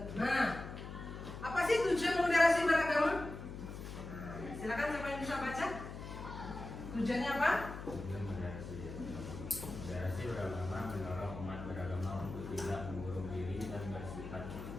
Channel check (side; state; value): left; noise; hum, 9 dB below the sound